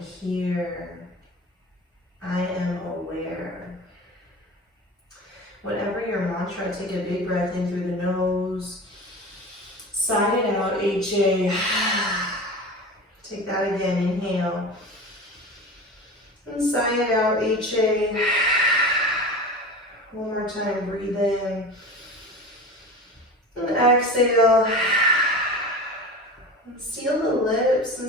I am aware. Whatever your mantra, take a big breath in through the nose. Sigh it out, HA. Take that again, inhale. And sigh it out, HA. One more time, breathe in. And exhale. And seal the lips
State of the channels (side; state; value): both; normal; correlation 0.33